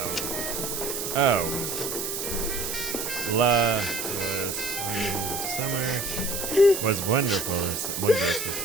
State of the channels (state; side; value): noise; right; hiss, 4 dB below the sound